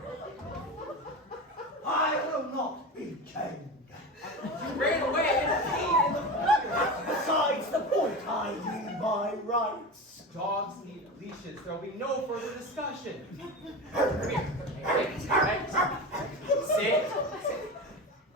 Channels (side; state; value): both; normal; correlation 0.26